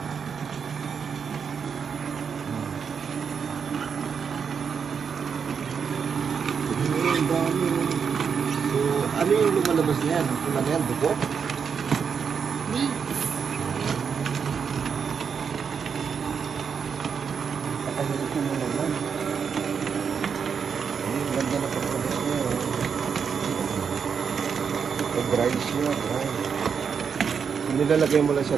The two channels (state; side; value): quieter; left; 6.5 dB